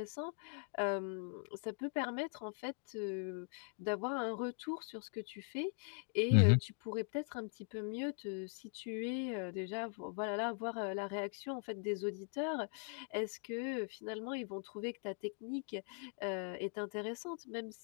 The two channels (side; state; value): right; silent; 50 dB below the other